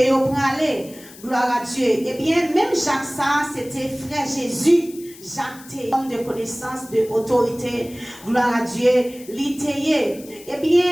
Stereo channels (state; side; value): noise; left; hiss, 20 dB below the sound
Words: praler. Gloire à Dieu. Eh bien, même Jacques ça, c'était frère Jésus. Jacques était homme de connaissance, de autorité. Gloire à Dieu. L'itayé. Eh